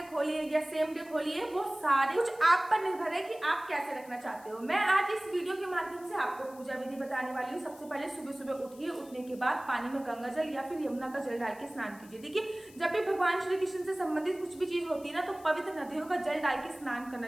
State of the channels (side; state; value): left; noise; hiss, 23 dB below the sound